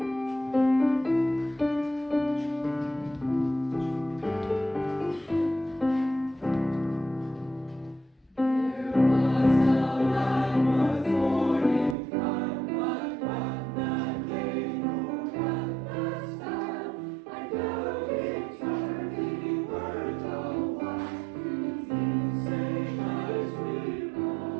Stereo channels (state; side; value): drops out; left; at 12.0 s